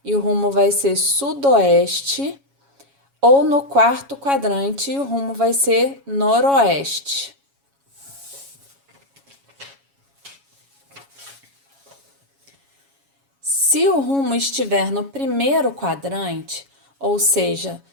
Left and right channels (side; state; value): left; late; 7.2 ms